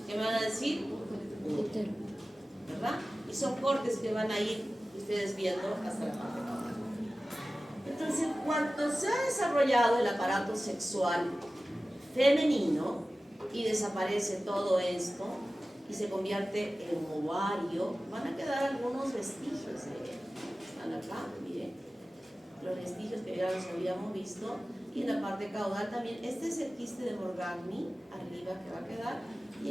¿qué me van a decir? Útero. ¿Verdad? Y son cortes que van a ir ustedes viendo hasta la parte caudal. Entonces, cuando se ha desarrollado el aparato sexual femenino y desaparece todo esto y se convierte en ovario, van a quedar algunos vestigios de él. Están acá, miren, los vestigios que ya los habíamos visto. Y en la parte caudal también, este es el quiste de Morgagni, arriba que va a quedar,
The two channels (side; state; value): both; normal; correlation 0.96